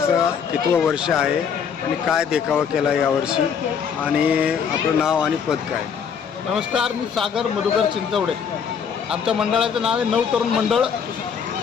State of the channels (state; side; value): quieter; right; 7.1 dB